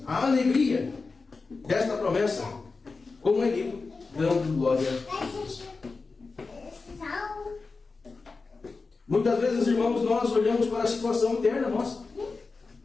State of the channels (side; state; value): right; quieter; 4.1 dB